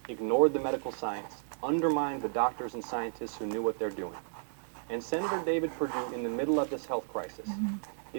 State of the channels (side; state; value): left; silent; 56 dB below the other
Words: ignored the medical science, undermined the doctors and scientists who knew what they're doing. And Senator David Perdue, in the middle of this health crisis,